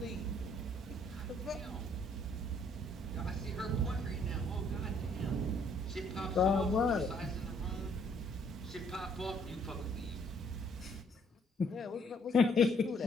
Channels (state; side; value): normal; both; correlation 0.65